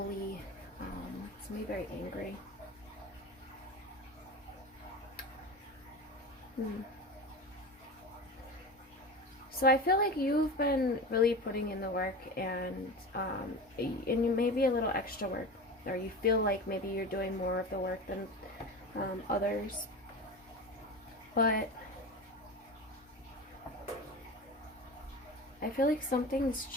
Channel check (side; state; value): both; normal; correlation 0.29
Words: somebody very angry. So I feel like you've been really putting in the work, and you maybe a little extra work, or you feel like maybe you're doing more of the work than others. But I feel like something's